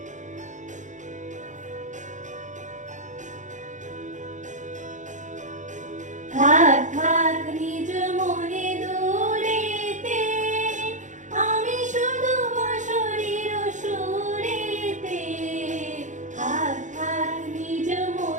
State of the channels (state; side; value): late; left; 0.36 ms